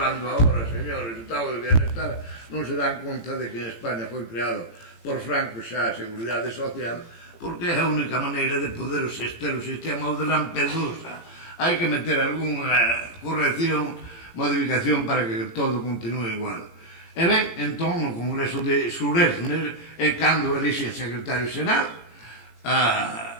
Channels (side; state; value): right; late; 18 ms